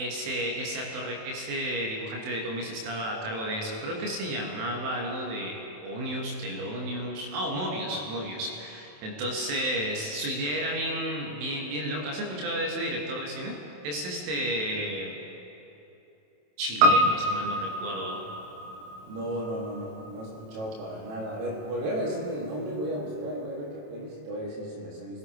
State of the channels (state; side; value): late; left; 27 ms